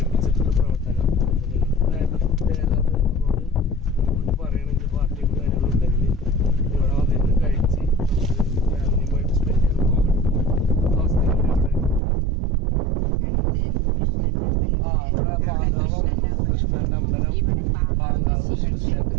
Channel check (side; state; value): left; drops out; at 12.0 s